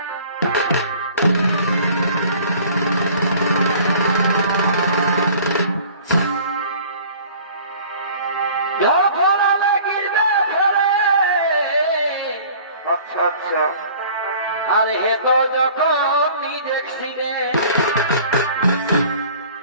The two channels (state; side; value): inverted; both; correlation -0.48